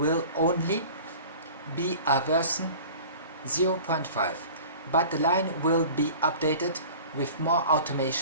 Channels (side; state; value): both; inverted; correlation -0.42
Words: only be a version 0.5, but the line will be updated with more